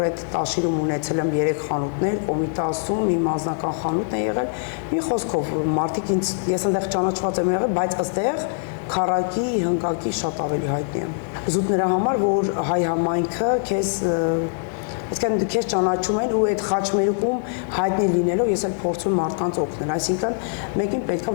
Տաշիրում ունեցել եմ 3 խանութներ, Կոմիտասում իմ անձնական խանութն է եղել, մի խոսքով մարդիկ ինձ ես այնտեղ ճանաչված եմ եղել, բայց ըստեղ քառակի, հնկակի շատ ավելի հայտնի եմ։ Զուտ նրա համար, որ հայ համայնքը քեզ այսինքն քեզ ճանաչում են ու այդ խաչմերուկում հայտնի լինելով ես էլ փորձում մարդկանց օգնել, այսինքն մեկին պետքա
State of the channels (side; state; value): right; silent; digital silence